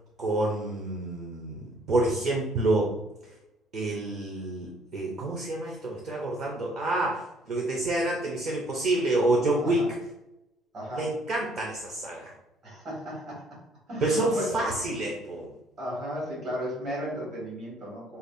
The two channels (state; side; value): normal; both; correlation 0.62